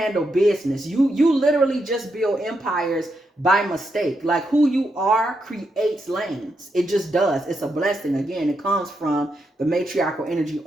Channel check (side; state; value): both; normal; correlation 0.82